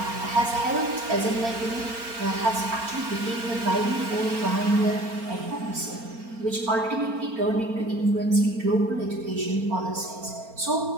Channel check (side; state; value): left; late; 4.4 ms